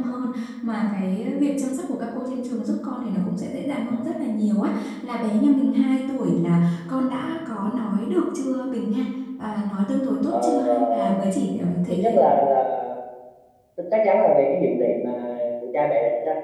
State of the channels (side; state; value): both; identical; correlation 1.00